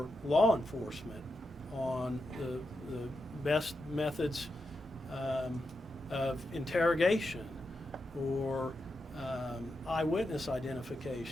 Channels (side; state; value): both; normal; correlation 0.87